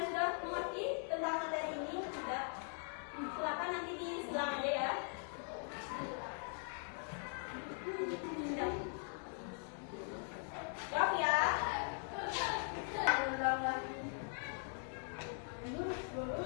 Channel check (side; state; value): right; silent; 50 dB below the other